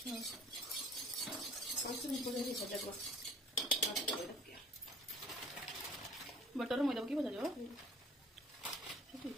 बटर मैदा की भजा जो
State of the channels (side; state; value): both; normal; correlation 0.54